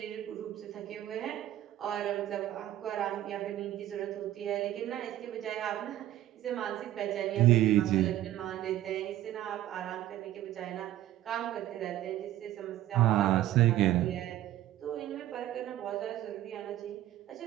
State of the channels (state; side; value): quieter; left; 13.4 dB